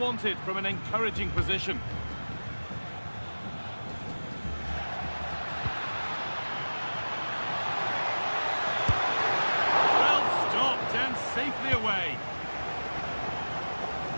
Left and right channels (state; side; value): inverted; both; correlation -1.00